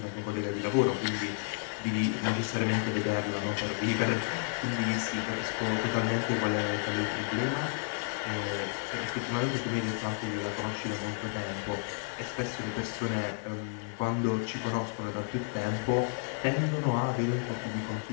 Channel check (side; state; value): right; silent; 57 dB below the other